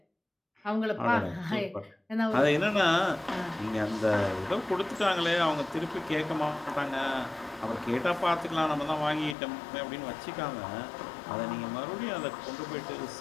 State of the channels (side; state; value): right; drops out; at 9.3 s